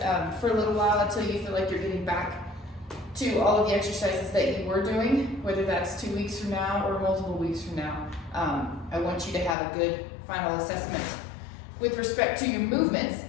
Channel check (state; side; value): drops out; right; at 9.6 s